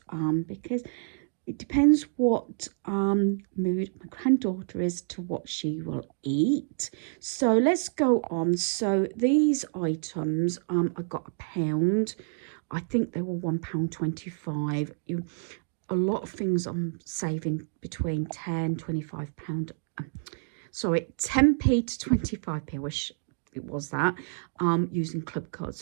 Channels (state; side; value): silent; left; digital silence